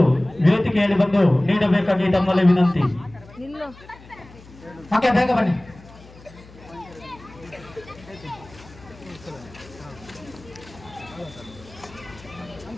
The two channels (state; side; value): noise; left; hum, 21 dB below the sound